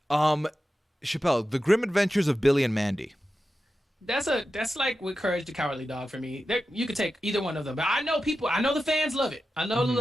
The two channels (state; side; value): normal; both; correlation 0.92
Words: Chappell, The Grim Adventures of Billy and Mandy. That's like with Courage the Cowardly Dog for me. You could take either one of them, but I know people. I know the fans love it. I know